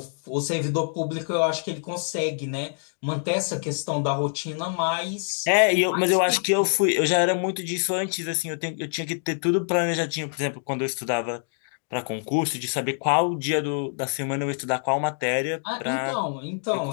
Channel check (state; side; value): silent; right; digital silence